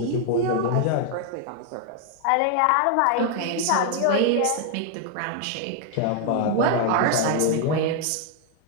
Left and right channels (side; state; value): both; different; correlation 0.00